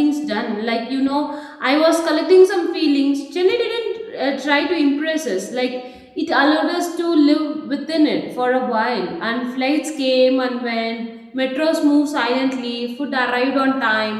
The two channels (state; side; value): identical; both; correlation 1.00